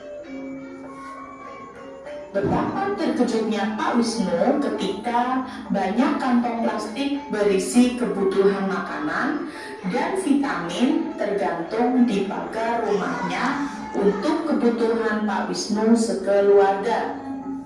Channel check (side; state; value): both; identical; correlation 1.00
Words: Betapa terkejutnya Pak Wisnu ketika banyak kantong plastik berisi kebutuhan makanan dan vitamin tergantung di pagar rumahnya untuk kebutuhan Pak Wisnu sekeluarga.